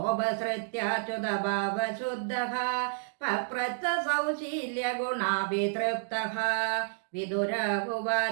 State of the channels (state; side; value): silent; left; digital silence